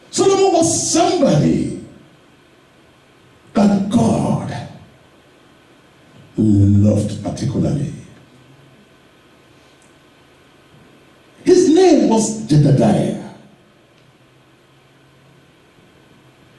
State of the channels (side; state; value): both; identical; correlation 1.00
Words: Solomon was somebody that God loved particularly. His name was Jedediah.